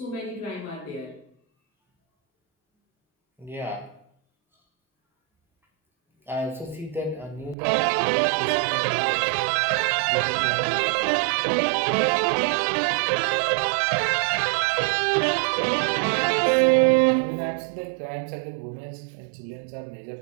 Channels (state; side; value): drops out; left; at 7.6 s